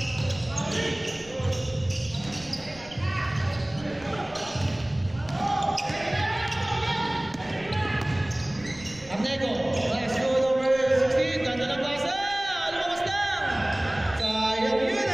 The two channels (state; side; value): noise; right; rumble, 22 dB below the sound